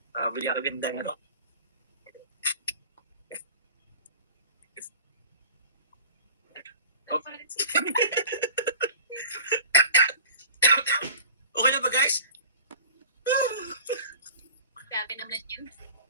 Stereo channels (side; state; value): both; inverted; correlation -0.43